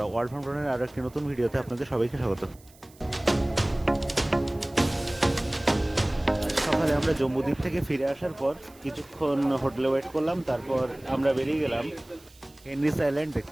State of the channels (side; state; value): right; noise; hiss, 26 dB below the sound